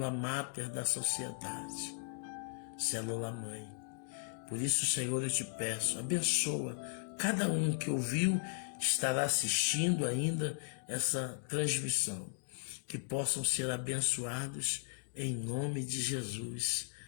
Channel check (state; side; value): silent; right; digital silence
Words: máter da sociedade, célula mãe. Por isso, Senhor, eu te peço, abençoa cada um que ouviu, estará assistindo ainda essa transmissão, que possam ser abençoados em nome de Jesus.